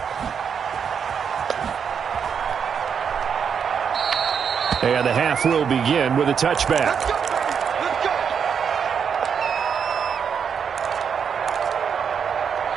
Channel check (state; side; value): quieter; left; 7.0 dB